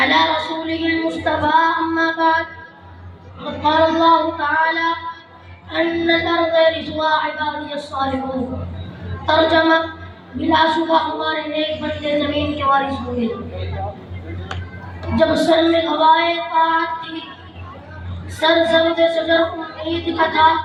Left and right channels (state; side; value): identical; both; correlation 1.00